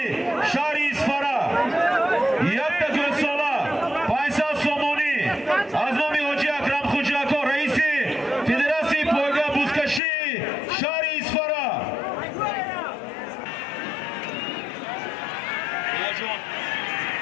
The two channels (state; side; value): drops out; right; at 10.0 s